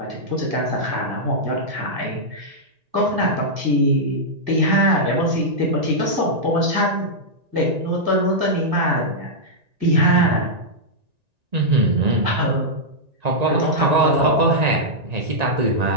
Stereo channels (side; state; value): left; late; 1.8 ms